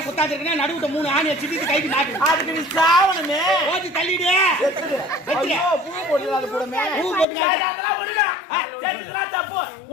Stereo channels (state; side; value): drops out; right; at 7.2 s